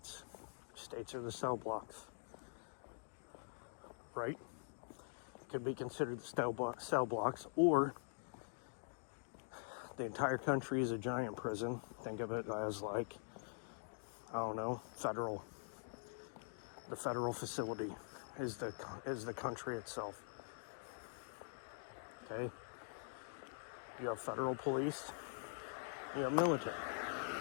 States are the cell blocks. Right? Could be considered the cell blocks, or the entire country is a giant prison. Think of it as like, I don't know, federal. The federal facility is the country itself. Okay? You have federal police. You have military.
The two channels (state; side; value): silent; right; digital silence